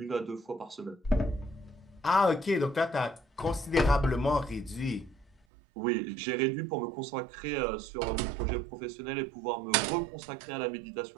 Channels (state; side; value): drops out; left; at 5.4 s